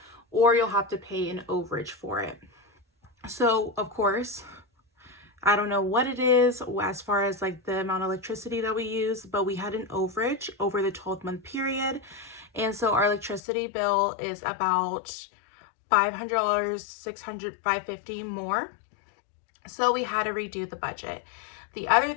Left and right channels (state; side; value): drops out; right; at 13.4 s